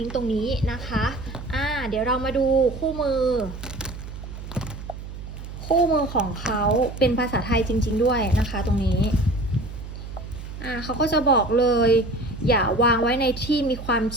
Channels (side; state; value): right; noise; hum, 11 dB below the sound